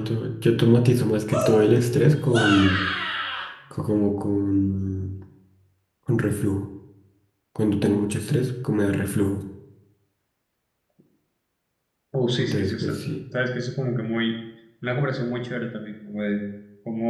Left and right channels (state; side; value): identical; both; correlation 1.00